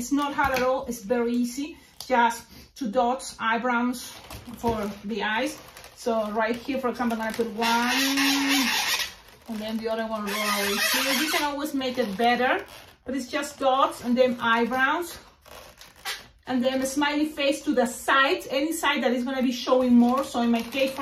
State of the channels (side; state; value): both; identical; correlation 1.00